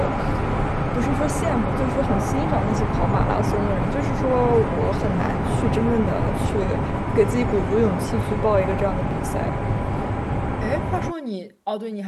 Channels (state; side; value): identical; both; correlation 1.00